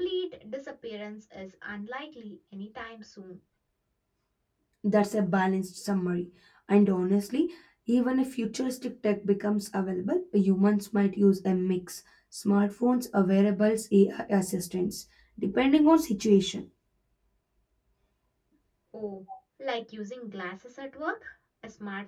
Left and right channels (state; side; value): identical; both; correlation 1.00